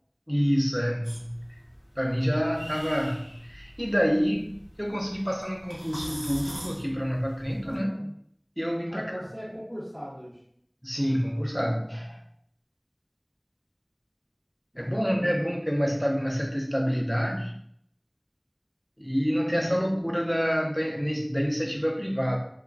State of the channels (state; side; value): identical; both; correlation 1.00